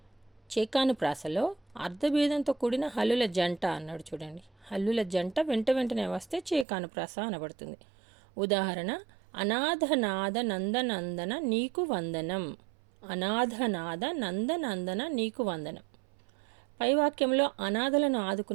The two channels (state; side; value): drops out; left; at 6.7 s